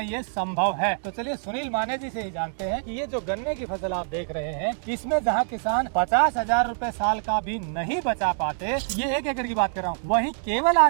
ये संभव है। तो चलिए सुनील माने जी से ही जानते हैं कि ये जो गन्ने की फसल आप देख रहे हैं, इसमें जहाँ किसान 50,000 रुपए साल का भी नहीं बचा पाते, ये 1 एकड़ की बात कर रहा हूँ, वहीं केवल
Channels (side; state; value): left; silent; digital silence